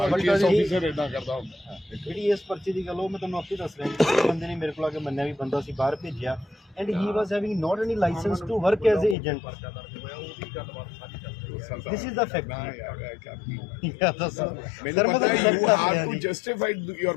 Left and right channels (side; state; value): right; drops out; at 9.2 s